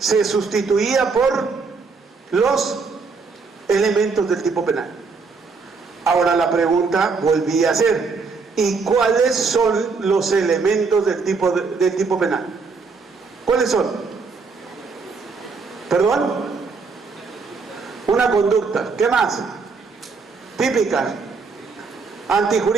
sustituía por los elementos del tipo penal. Ahora la pregunta volvía a ser: ¿y cuáles son los elementos del tipo penal? ¿Cuáles son? ¿Perdón? Una conducta. ¿Qué más? Típica,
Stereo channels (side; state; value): left; quieter; 4.7 dB